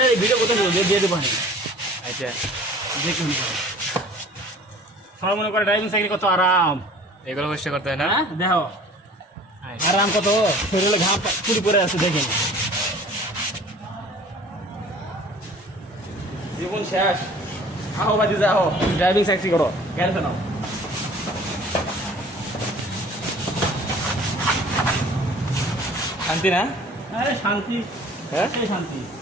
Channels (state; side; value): normal; both; correlation 0.48